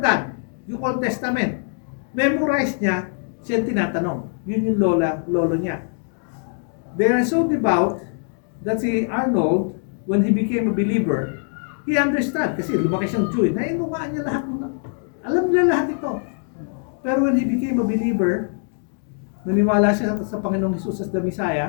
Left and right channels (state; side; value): silent; right; 58 dB below the other